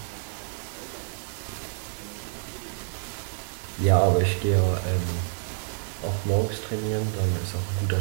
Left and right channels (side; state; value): left; silent; digital silence